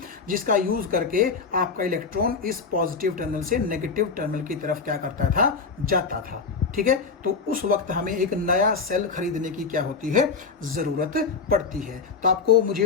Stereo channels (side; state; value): right; quieter; 5.0 dB